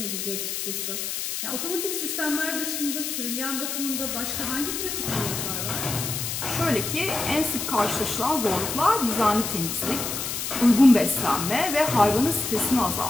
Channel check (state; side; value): noise; left; hiss, 3 dB below the sound